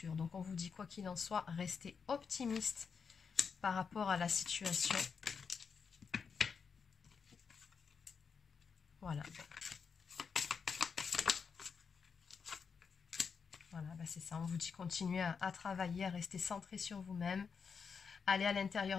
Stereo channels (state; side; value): quieter; right; 5.9 dB